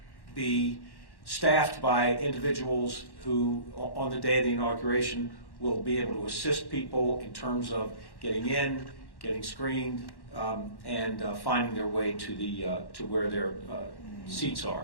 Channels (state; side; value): late; right; 1.1 ms